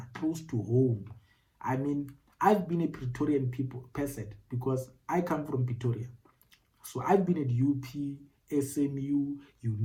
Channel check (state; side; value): identical; both; correlation 1.00